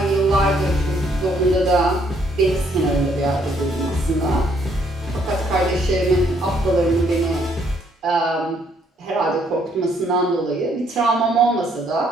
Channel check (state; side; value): normal; both; correlation 0.68